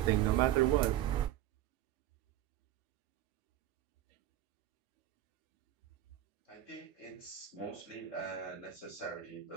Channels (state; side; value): quieter; left; 12.6 dB